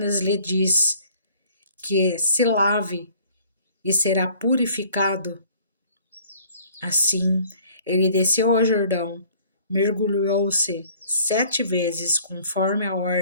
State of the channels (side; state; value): both; inverted; correlation -0.55